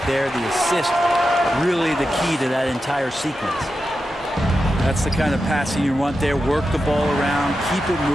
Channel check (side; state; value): both; normal; correlation 0.90